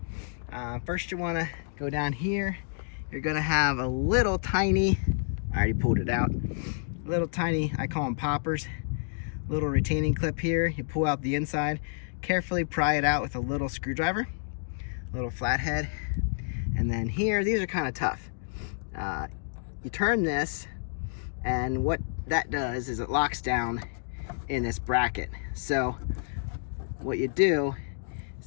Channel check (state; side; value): silent; right; digital silence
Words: First you wanna go down here. You're gonna have a little tiny, I already pulled it out, little tiny, I call them poppers, little retaining clip here. You pull out the inside, carefully pry it out with a little screwdriver. Little flathead, and then here, these are kind of tough. You turn this, and what that does is it locks down in this bracket. So what you do,